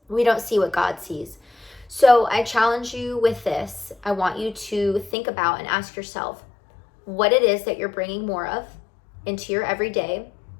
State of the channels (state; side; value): drops out; right; at 5.2 s